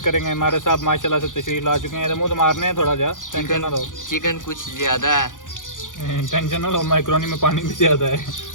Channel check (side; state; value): right; late; 0.88 ms